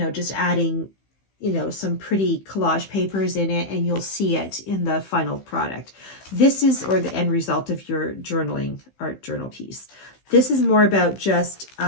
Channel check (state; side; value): late; right; 15 ms